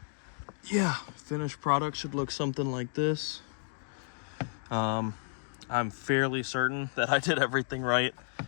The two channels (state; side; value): silent; right; digital silence